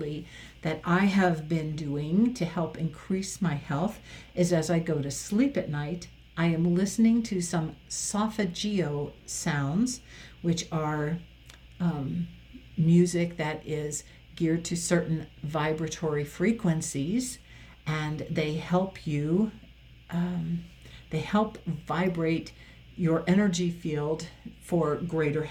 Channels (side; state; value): both; identical; correlation 1.00